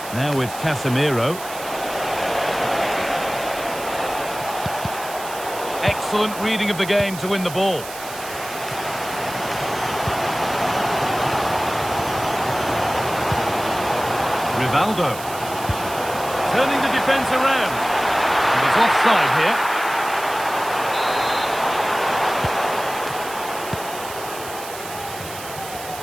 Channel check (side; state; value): right; noise; hiss, 12 dB below the sound